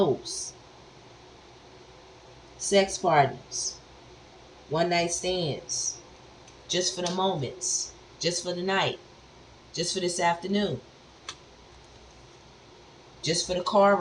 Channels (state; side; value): identical; both; correlation 1.00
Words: sex partners, one night stands, just for the moments, just for the night, just for this afternoon, just for the car